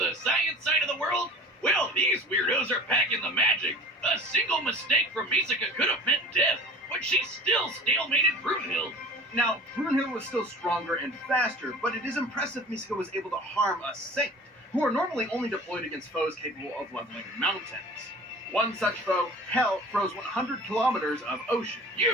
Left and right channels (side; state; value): both; normal; correlation 0.42